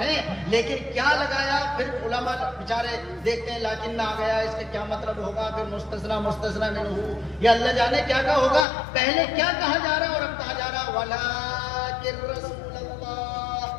لیکن کیا لگایا پھر علماء بیچارے دیکھتے ہیں لاکن نہ آ گیا, اس کا کیا مطلب ہوگا, پھر مستثنا منہ, یا اللہ جانے کیا کیا ہوگا. پہلے کیا کہا جا رہا اور اب کہا جا رہا ولکن رسول اللہ.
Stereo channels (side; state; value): right; drops out; at 8.7 s